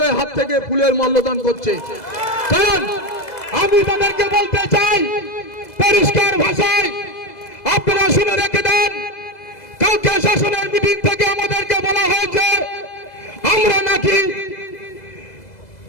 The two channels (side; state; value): right; late; 2.0 ms